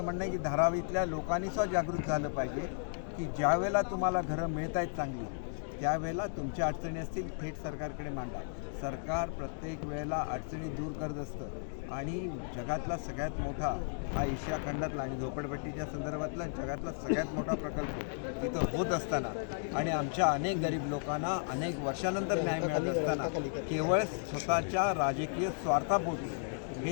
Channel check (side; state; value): right; silent; digital silence